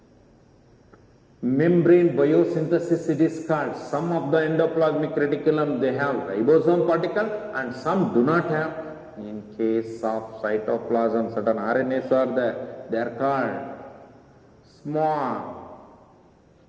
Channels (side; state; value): both; identical; correlation 1.00